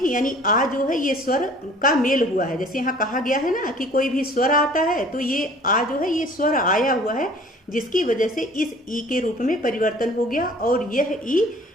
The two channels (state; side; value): normal; both; correlation 0.50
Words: यानी आ जो है ये स्वर का मेल हुआ है। जैसे यहाँ कहा गया है ना कि कोई भी स्वर आता है तो ये आ जो है ये स्वर आया हुआ है, जिसकी वजह से इस ई के रूप में परिवर्तन हो गया और यह ई